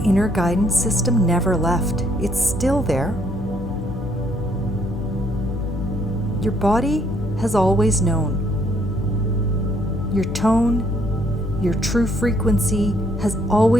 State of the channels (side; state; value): both; normal; correlation 0.68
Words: inner guidance system never left. It's still there. Your body has always known. Your tone, your true frequency has